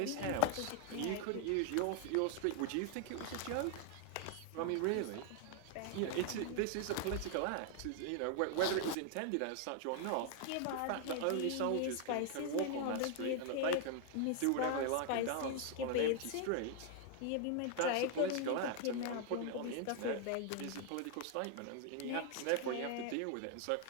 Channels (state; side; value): different; both; correlation 0.00